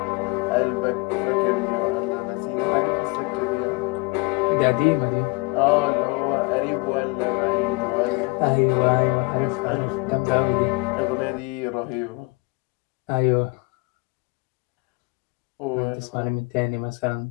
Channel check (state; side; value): quieter; right; 27.4 dB